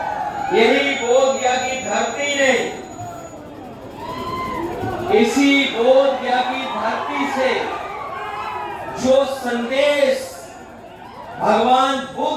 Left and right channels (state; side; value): identical; both; correlation 1.00